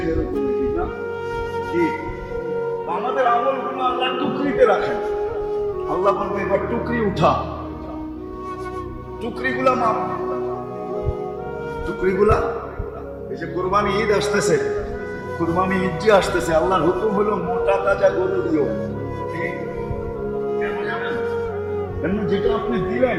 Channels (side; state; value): both; identical; correlation 1.00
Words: এরকম, ঠিক না? কি আমাদের আমলগুলো আল্লাহ টুকরিতে রাখেন। আল্লাহ বলবে এবার টুকরি উঠা, টুকরিগুলা মাপ, টুকরিগুলা। এই যে কুরবানি ঈদ আসতেছে, কুরবানি ঈদ যে আসতেছে, আল্লাহর হুকুম হলো মোটা তাজা গরু দিও। কেন জানেন? কেন? যেটা আপনি দিলেন